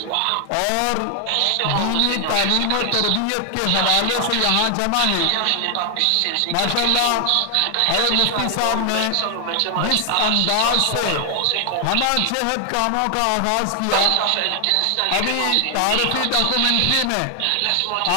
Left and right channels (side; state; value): both; different; correlation 0.00